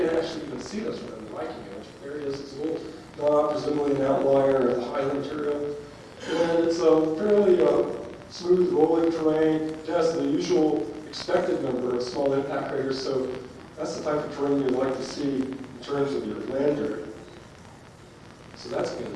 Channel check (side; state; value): both; identical; correlation 1.00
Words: actually even see this one in the Viking image. There it is. It's a little knob, presumably an outlier of the highland material. And it's a fairly smooth, rolling terrain. It has the usual expected number of small impact craters, so that's the type of terrain you'd like to see in terms of your lander. So that's